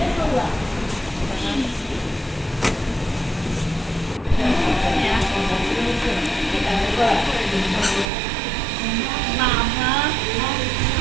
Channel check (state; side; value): drops out; left; at 8.1 s